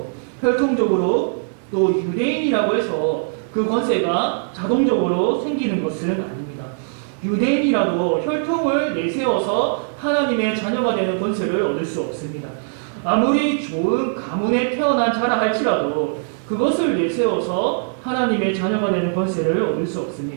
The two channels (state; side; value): silent; left; 65 dB below the other